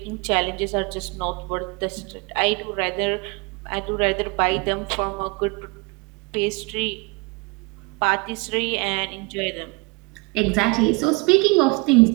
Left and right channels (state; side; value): quieter; left; 28.2 dB